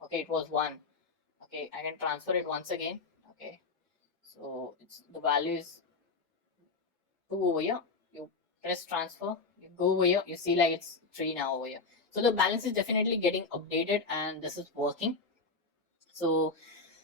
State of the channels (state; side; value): quieter; right; 4.1 dB